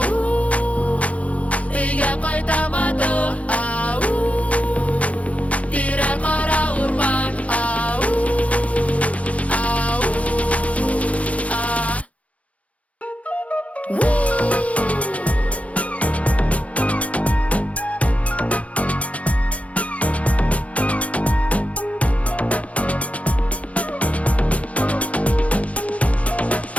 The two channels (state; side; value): late; right; 0.066 ms